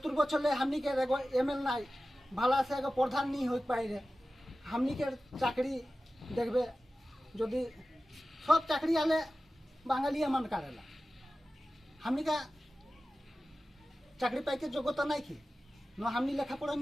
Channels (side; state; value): both; normal; correlation 0.95